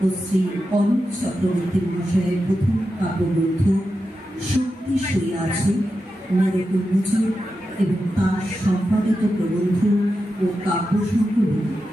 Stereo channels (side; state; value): both; normal; correlation 0.90